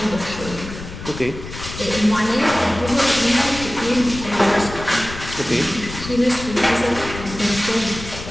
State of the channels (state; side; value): noise; left; rumble, 11 dB below the sound